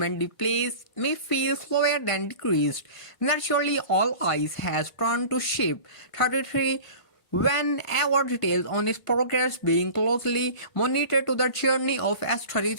the pace may feel slower than decreased. Naturally, all eyes has turned to Ship 33 whenever details on its progress being closely monitored. To the journey of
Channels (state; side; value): late; right; 1.5 ms